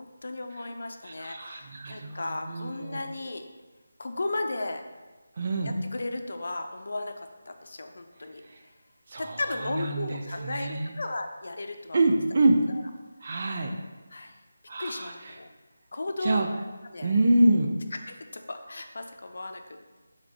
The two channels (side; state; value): both; inverted; correlation -0.92